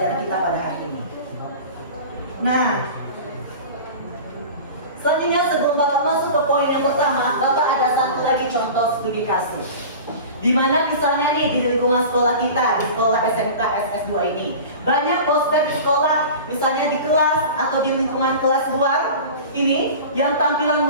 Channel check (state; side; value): inverted; both; correlation -0.36